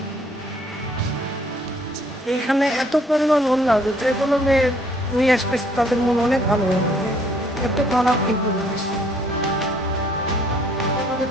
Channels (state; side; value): normal; both; correlation 0.62